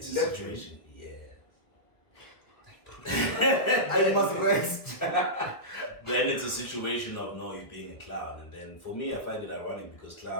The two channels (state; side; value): late; right; 1.4 ms